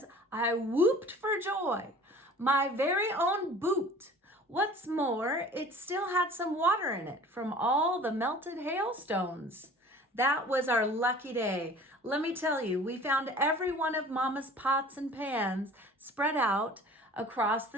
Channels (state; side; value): normal; both; correlation 0.45